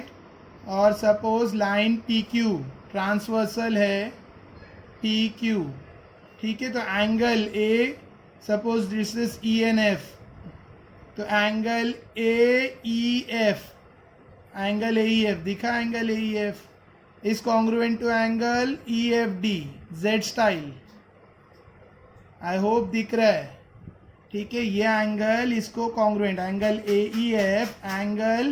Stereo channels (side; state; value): both; identical; correlation 1.00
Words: और suppose line P Q transversal है, पी क्यू, ठीक है। तो angle A, suppose this is E N F, तो angle A E F, angle A E F दिखा, angle A E F is congruent to angle EFD, Z style. I hope दिख रहा है, ठीक है। ये एंगल इसको congruent, angle AEF